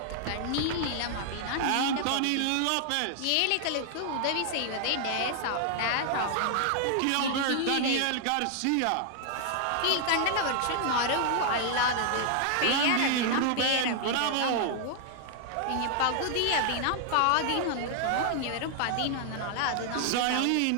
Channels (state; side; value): different; both; correlation 0.00